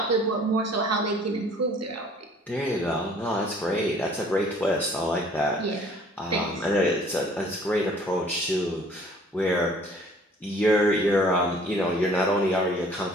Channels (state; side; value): normal; both; correlation 0.54